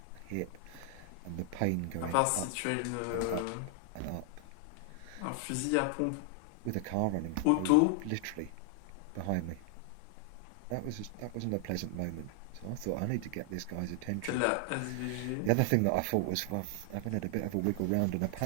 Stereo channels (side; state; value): both; different; correlation 0.00